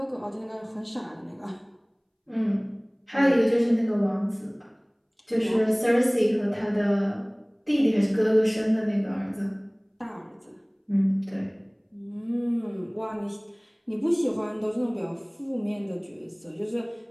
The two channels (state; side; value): identical; both; correlation 1.00